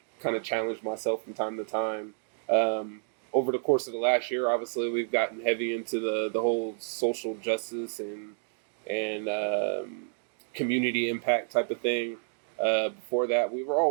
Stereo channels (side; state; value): left; silent; digital silence